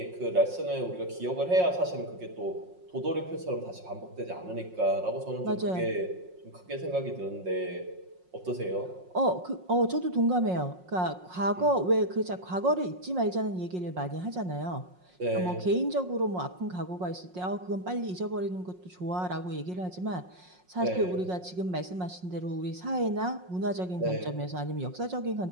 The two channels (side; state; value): left; late; 5.5 ms